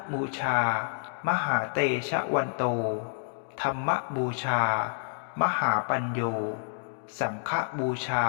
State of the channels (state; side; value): silent; right; digital silence